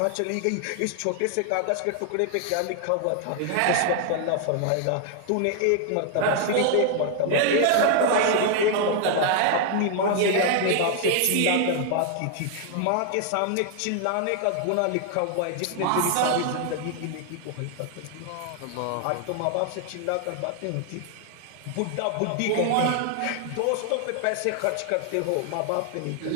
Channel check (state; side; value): different; both; correlation 0.00